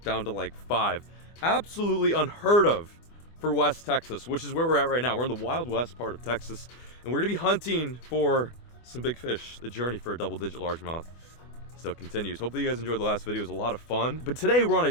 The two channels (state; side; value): late; right; 24 ms